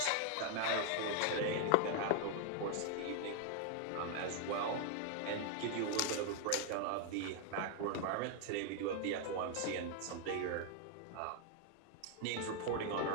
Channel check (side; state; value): both; different; correlation 0.00